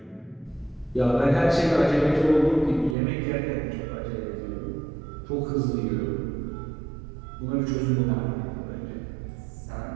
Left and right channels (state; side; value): drops out; left; at 3.0 s